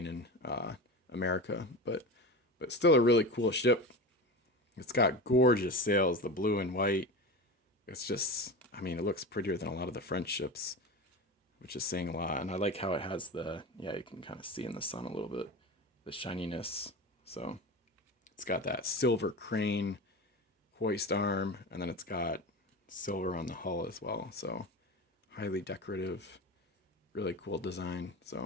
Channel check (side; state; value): both; normal; correlation 0.27